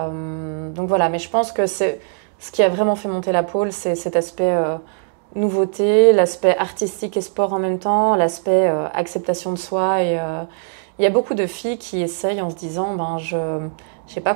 voilà, mais je pense que ce qui a vraiment fait monter la pôle, c'est cet aspect nouveauté, l'aspect artistique et sport en même temps, l'aspect acceptation de soi. Et il y a beaucoup de filles qui essayent en se disant je n'ai pas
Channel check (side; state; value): left; silent; digital silence